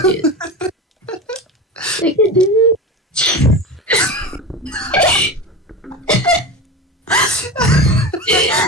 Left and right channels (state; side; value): normal; both; correlation 0.27